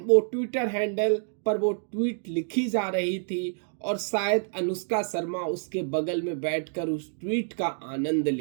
वो ट्विटर हैंडल पर वो ट्वीट लिखी जा रही थी और शायद अनुष्का शर्मा उसके बगल में बैठकर उस ट्वीट का आनंद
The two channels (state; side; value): silent; left; 60 dB below the other